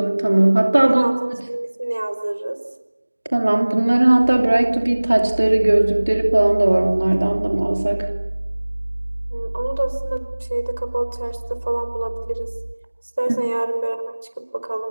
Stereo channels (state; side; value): inverted; both; correlation -1.00